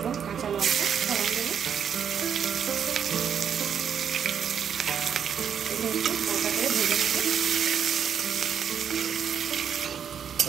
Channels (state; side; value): quieter; left; 8.0 dB